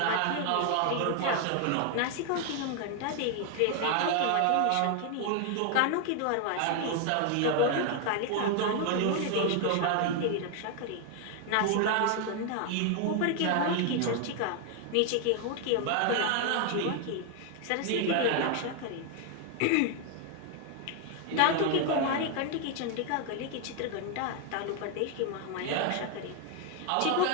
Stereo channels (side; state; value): both; different; correlation 0.00